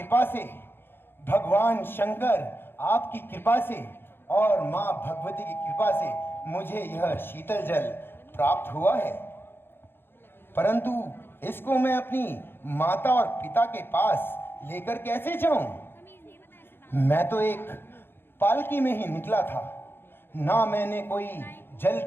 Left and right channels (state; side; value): late; right; 0.10 ms